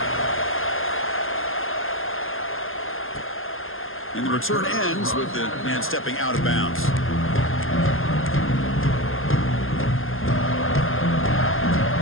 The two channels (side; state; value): right; late; 0.60 ms